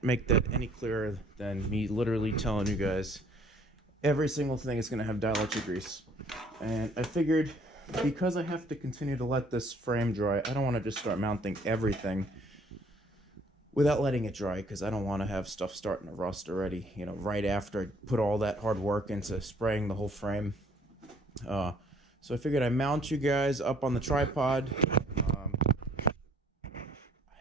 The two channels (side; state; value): both; normal; correlation 0.59